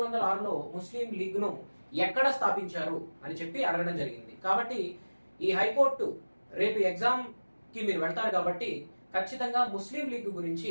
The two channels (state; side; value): inverted; both; correlation -1.00